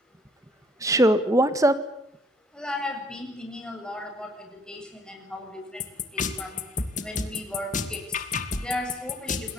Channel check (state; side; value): normal; both; correlation 0.61